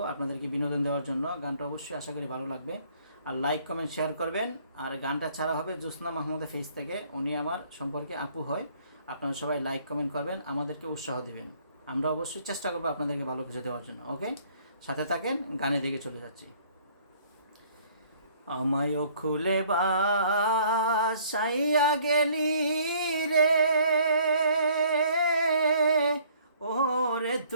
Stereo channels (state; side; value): inverted; both; correlation -0.59